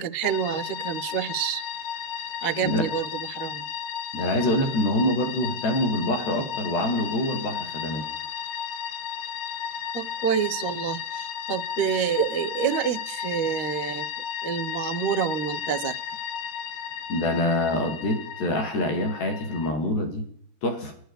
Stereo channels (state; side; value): late; right; 13 ms